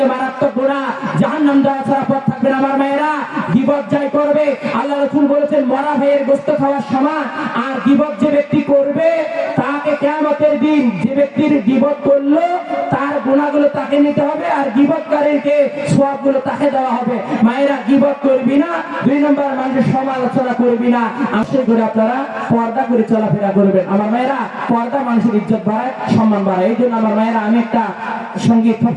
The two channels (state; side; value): identical; both; correlation 1.00